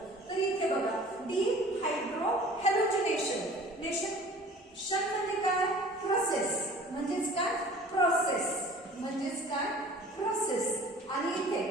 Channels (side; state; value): both; normal; correlation 0.46